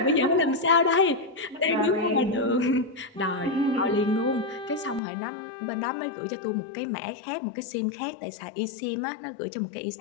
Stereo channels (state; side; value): drops out; right; at 5.0 s